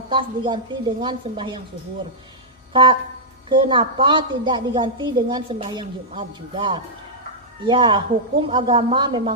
diganti dengan sembahyang zuhur? Kenapa tidak diganti dengan sembahyang Jumat juga? Ya, hukum agama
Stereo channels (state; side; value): normal; both; correlation -0.10